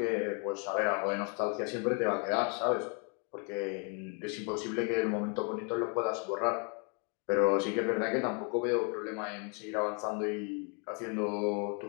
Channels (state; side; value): quieter; right; 37.7 dB